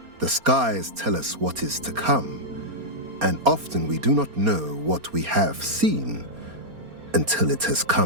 The skies tell us what is to come, and often we do not know what we have seen until it has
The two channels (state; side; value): late; left; 4.3 ms